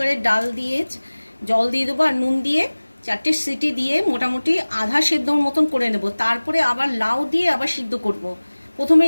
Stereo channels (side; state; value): both; inverted; correlation -1.00